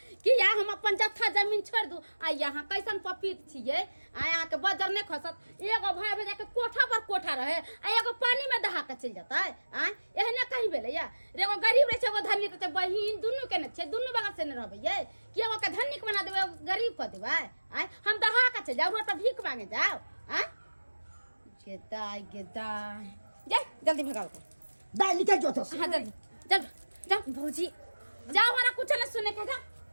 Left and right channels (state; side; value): inverted; both; correlation -1.00